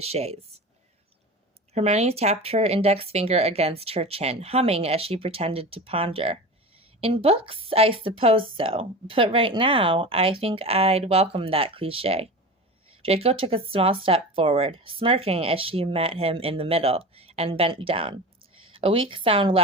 Hermione tapped her index finger against her chin, humming as she pretended to ponder. In books, I suppose so, but right now, I think I'd welcome that cliché. Draco took a small step forward, smirking as she met him in the middle, and bent down. A weak sound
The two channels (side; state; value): both; normal; correlation 0.30